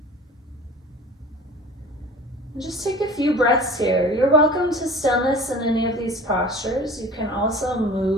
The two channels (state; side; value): normal; both; correlation 0.42